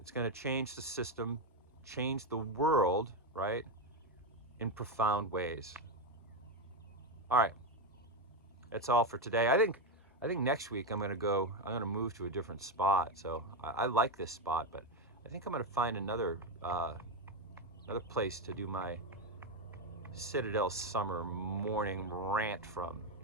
going to change the system, change the world, right, in profound ways. All right, that's all for today. I think next week I'm going to move to a different spot. So I like this spot, but I think I'm going to find another place to do my Citadel summer morning rant from.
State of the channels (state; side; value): normal; both; correlation 0.09